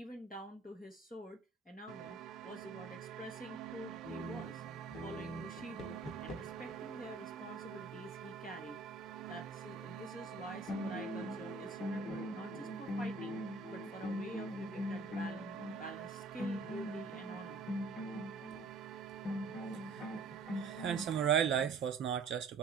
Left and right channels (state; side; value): quieter; left; 4.1 dB